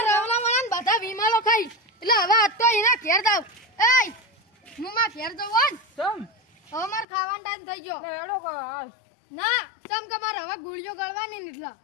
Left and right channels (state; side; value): drops out; right; at 7.1 s